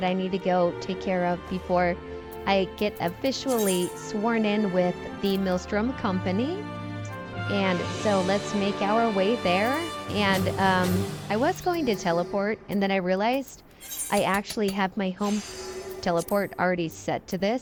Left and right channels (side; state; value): both; identical; correlation 1.00